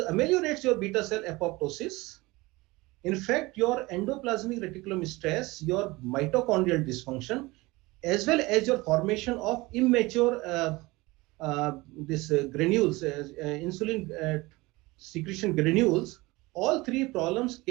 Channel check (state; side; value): quieter; left; 21.9 dB